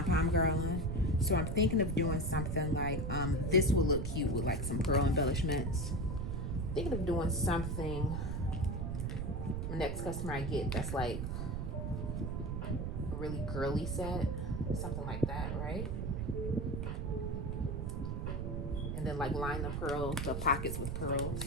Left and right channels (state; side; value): noise; right; rumble, 2 dB below the sound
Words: girl on. So I'm thinking of doing something like, this will look cute with like some pearl embellishments. Thinking of doing something, next customer I get, that's like a really girly set. Something like that, right? And then like line the pockets with pearls.